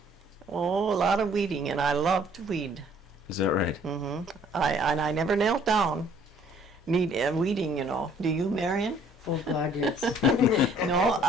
Oh, a lot of weeding, and I love to weed. Is that right? Mm-hmm. I never knelt down. Weeding, you know. Do you, Marion? Oh, God, yes. No,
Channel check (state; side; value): normal; both; correlation 0.59